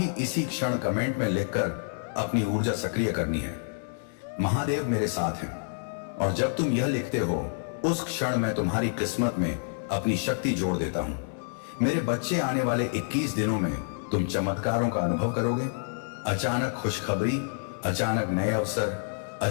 इसी क्षण कमेंट में लिखकर अपनी ऊर्जा सक्रिय करनी है। महादेव मेरे साथ हैं, और जब तुम यह लिखते हो उस क्षण मैं तुम्हारी किस्मत में अपनी शक्ति जोड़ देता हूं। मेरे बच्चे, आने वाले 21 दिनों में तुम चमत्कारों का अनुभव करोगे। अचानक खुशखबरी, अचानक नए अवसर,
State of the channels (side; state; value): right; silent; 56 dB below the other